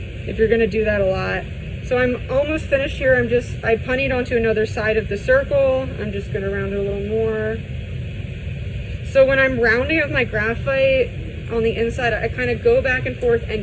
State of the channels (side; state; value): both; identical; correlation 1.00